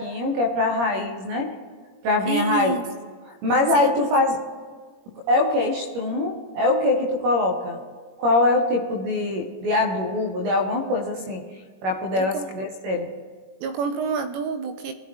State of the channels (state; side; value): late; left; 21 ms